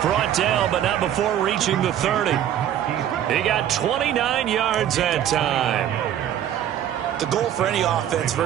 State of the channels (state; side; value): quieter; left; 10.8 dB